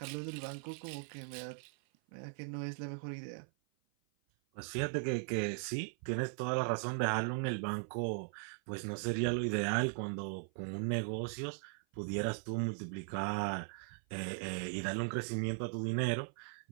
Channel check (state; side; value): silent; left; 52 dB below the other